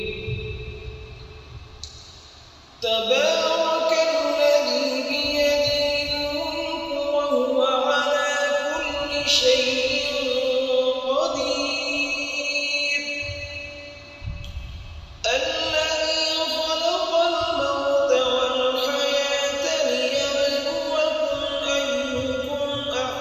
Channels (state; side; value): identical; both; correlation 1.00